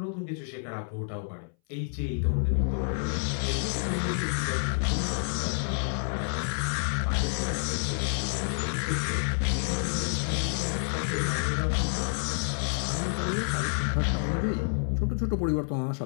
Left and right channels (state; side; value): silent; right; 59 dB below the other